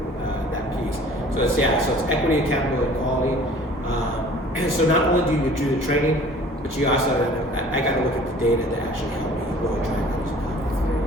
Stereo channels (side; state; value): both; normal; correlation 0.49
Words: that piece. So it's equity, accountability, and quality. And so not only do you do the training, but you also I got to look at the data to actually help me really track